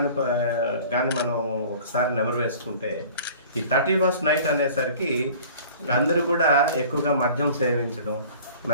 కానీ మనం ఒకసారి నెమరు వేసుకుంటే ఈ 31st నైట్ అనేసరికి అందరూ కూడా ఎక్కువగా మద్యం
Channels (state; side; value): inverted; both; correlation -0.46